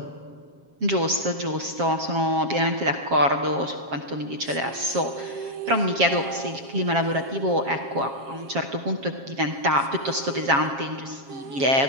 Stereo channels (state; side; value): late; left; 7.4 ms